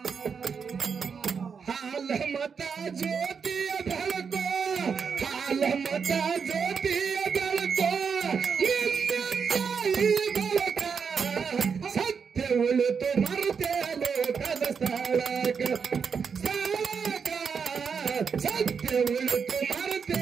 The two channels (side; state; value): left; quieter; 6.1 dB